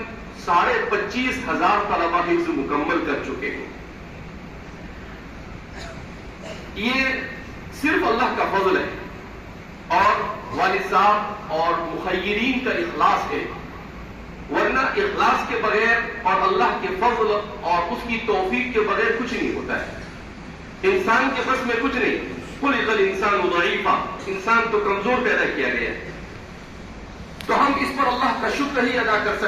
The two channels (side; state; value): both; identical; correlation 1.00